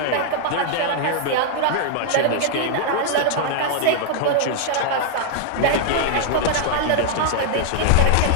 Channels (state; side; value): different; both; correlation 0.00